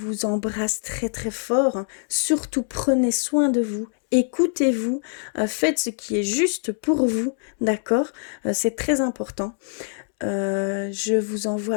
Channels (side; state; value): right; silent; digital silence